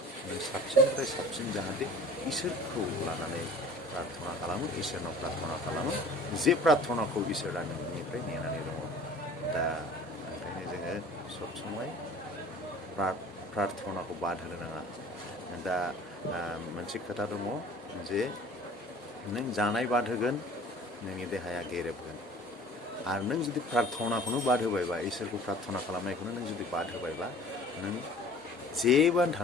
नों साबसिननिफ्राय साबसिन जाहाथे इसोरखौ लानानै प्रार्थना खालामो इसोरनाव प्रार्थना खालामो जे प्रार्थनाखौ इसोरा नोंनिफ्राय नेनानै दङ दा ओंखायनो जोङो सब समय प्रार्थनाखौ बाद होनो नाङा दा मोनसे खोथा दङ जे नों जानाय बाद होगोन नोंनि देहाया गेरेबगोन आरो नों जुदि प्रार्थनाखौनो बाद होबायबा इसोरखौ प्रार्थना खालामनायखौनो नों जुदि बाद होबायबा नों जेबोआनो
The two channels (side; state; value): both; normal; correlation 0.46